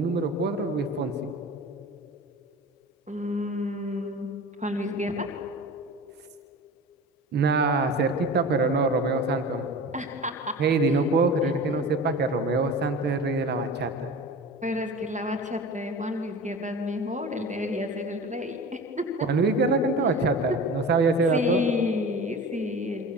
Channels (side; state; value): both; normal; correlation 0.35